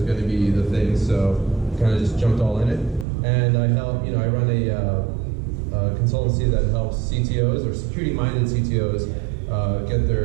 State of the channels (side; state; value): left; drops out; at 3.1 s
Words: going to be the thing, so kind of just jumped all in it. And I run a consultancy that helps CTOs or security-minded CTOs get